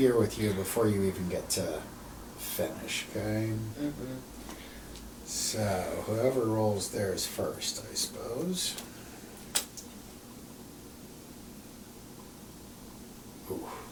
with you before you even get to finish, okay? Mm-hmm. So, whoever rolls theirs first, I suppose. Ooh,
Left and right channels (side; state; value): both; identical; correlation 1.00